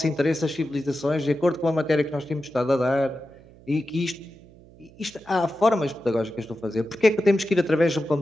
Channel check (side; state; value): right; noise; hum, 24 dB below the sound